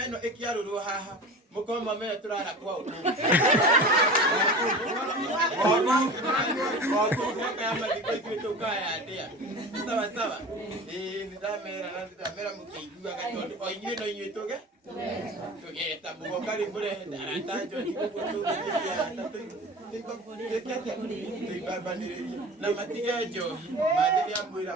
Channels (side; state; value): both; normal; correlation 0.35